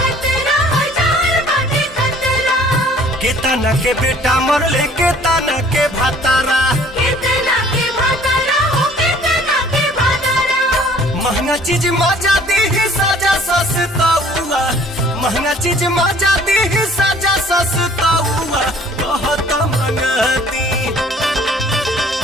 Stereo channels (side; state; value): both; normal; correlation 0.54